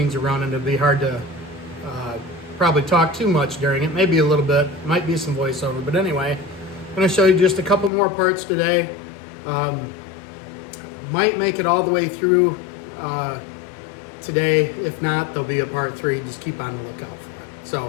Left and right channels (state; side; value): drops out; right; at 7.9 s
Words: are running. It'll be hard to probably talk too much during it. Maybe a little bit. Might be some voiceover. But anyway, I'm going to show you just a couple more parts today. Might make it all the way through today. If not, there'll be a part 3. Just keep on the lookout for it.